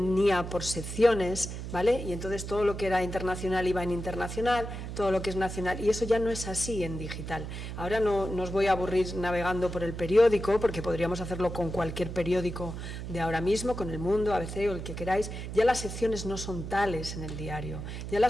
por secciones, ¿vale? Y entonces todo lo que era internacional iba en internacional, todo lo que es nacional, y eso ya no es así en digital. Ahora no os voy a aburrir navegando por el periódico, porque podríamos hacerlo con cualquier periódico de ahora mismo, con El Mundo, ABC o el que queráis. Ya las secciones no son tales en el diario, ya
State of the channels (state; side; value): noise; right; hum, 7 dB below the sound